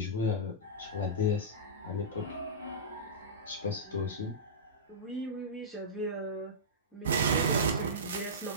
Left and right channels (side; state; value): both; normal; correlation -0.18